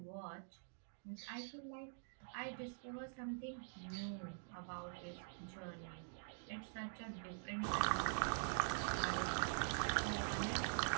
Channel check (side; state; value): left; silent; digital silence